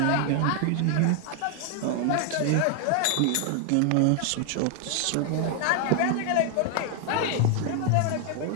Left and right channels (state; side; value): different; both; correlation 0.00